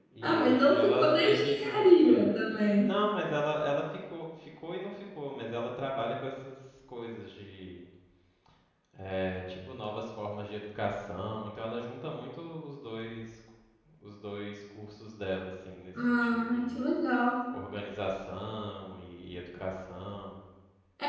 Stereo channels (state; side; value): identical; both; correlation 1.00